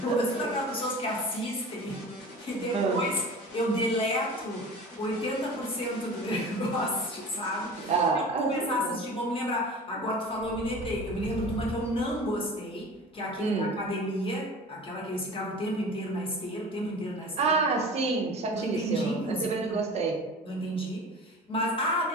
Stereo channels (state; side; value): normal; both; correlation 0.38